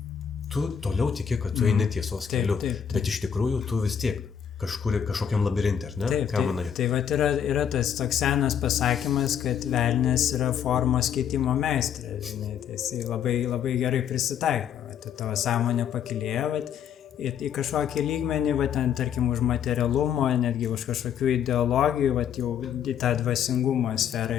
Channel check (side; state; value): right; quieter; 8.4 dB